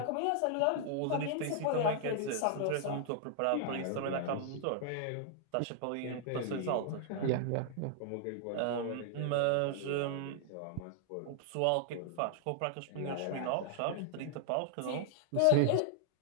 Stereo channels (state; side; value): different; both; correlation -0.01